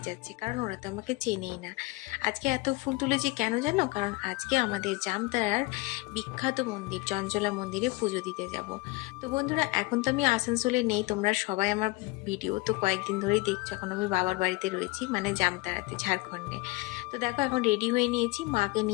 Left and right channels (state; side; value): quieter; right; 22.7 dB